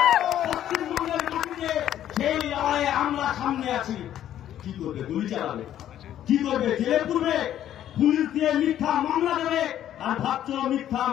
পশ্চিমবঙ্গের মাটিতে সেই লড়াইয়ে আমরা সামনে আছি। কি করবে? গুলি চালাবে? কি করবে? জেলে পুরবে? পুলিশ দিয়ে মিথ্যা মামলা দেবে? আর ভাবছ মিথ্যা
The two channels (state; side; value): quieter; right; 11.4 dB